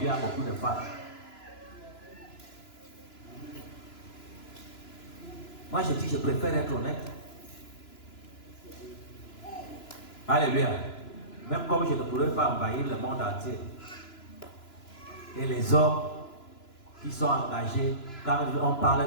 a beaucoup de femmes. Moi je dis je préfère être honnête. Alléluia. Même comme je ne pourrais pas envahir le monde entier. Et les hommes qui sont engagés, quand on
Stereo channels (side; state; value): right; late; 2.9 ms